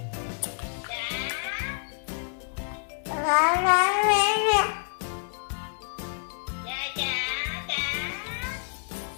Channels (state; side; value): silent; right; 59 dB below the other